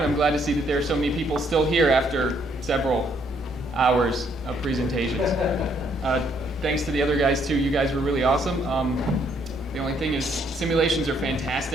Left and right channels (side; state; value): both; normal; correlation 0.69